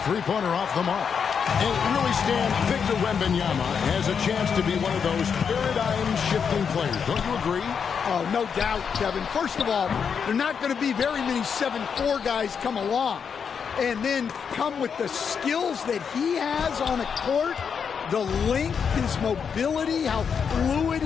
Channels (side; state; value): right; quieter; 6.7 dB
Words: three-pointer off the mark. And really, Stan, Victor Wembanyama has a chance to be one of those paradigm-shifting players. Don't you agree? Oh, no doubt, Kevin. First of all, there are not going to be very many 7'4" guys come along and then come with the skills that he has on a court, the length, his mobility, how fluid